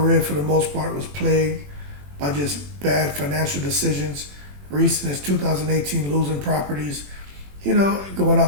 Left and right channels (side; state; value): left; late; 21 ms